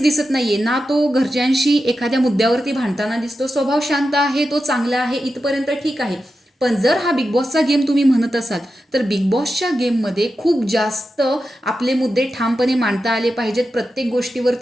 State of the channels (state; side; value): normal; both; correlation 0.90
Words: दिसत नाहीये ना, तो घरच्यांशी एखाद्या मुद्द्यावरती भांडताना दिसतो. स्वभाव शांत आहे, तो चांगला आहे, इथपर्यंत ठीक आहे. पण जर हा बिग बॉसचा गेम तुम्ही म्हणत असाल तर बिग बॉसच्या गेममध्ये खूप जास्त आपले मुद्दे ठामपणे मांडता आले पाहिजेत, प्रत्येक